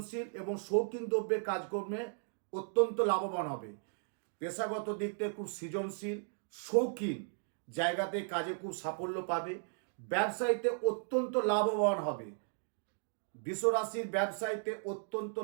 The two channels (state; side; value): silent; left; digital silence